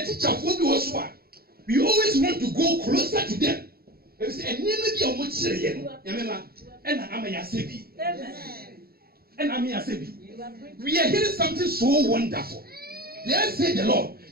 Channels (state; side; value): late; left; 0.45 ms